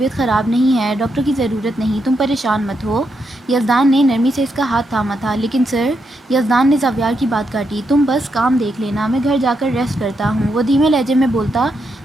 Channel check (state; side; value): normal; both; correlation 0.81